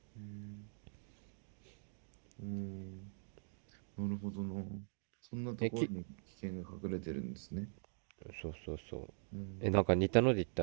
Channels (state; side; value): silent; left; digital silence